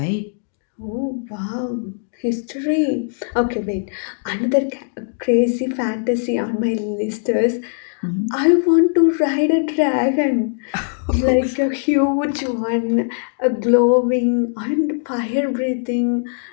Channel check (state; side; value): silent; right; digital silence